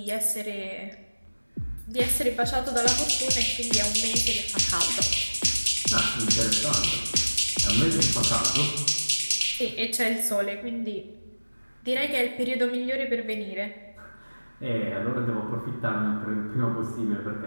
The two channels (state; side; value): inverted; both; correlation -1.00